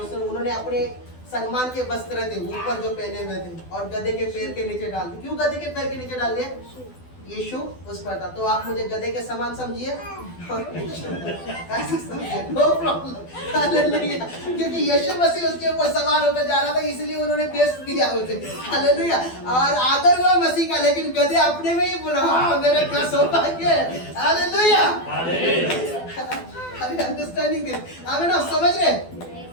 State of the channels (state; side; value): late; right; 12 ms